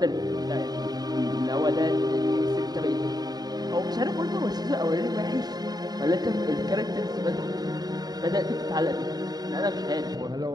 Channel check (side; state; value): left; late; 0.19 ms